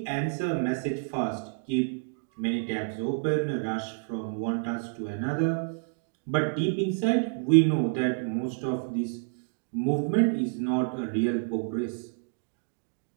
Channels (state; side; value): silent; left; digital silence